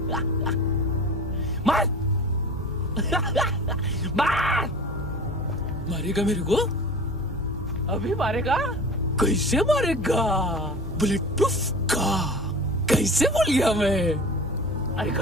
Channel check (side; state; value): both; normal; correlation 0.36